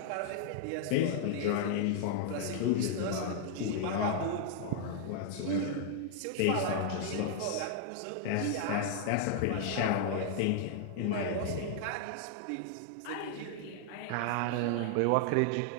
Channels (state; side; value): different; both; correlation -0.01